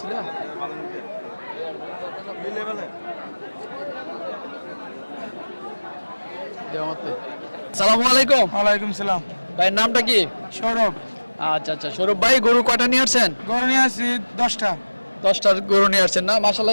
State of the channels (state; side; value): inverted; both; correlation -1.00